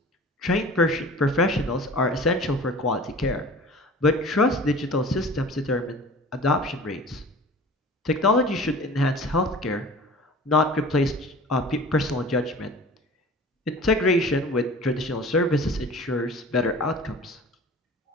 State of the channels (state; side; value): normal; both; correlation 0.41